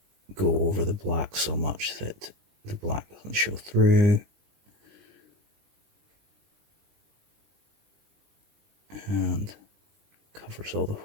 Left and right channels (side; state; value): left; late; 20 ms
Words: go over the black so much that the black doesn't show through. And covers all the